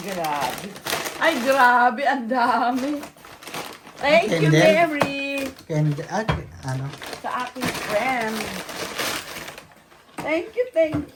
grabe. Ay, grabe. Ang dami. Thank you, And then- Mary. And, ano? Sa aking friend. Thank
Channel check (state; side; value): identical; both; correlation 1.00